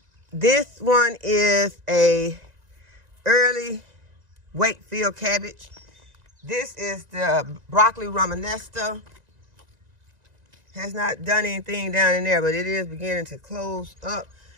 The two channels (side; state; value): left; late; 1.9 ms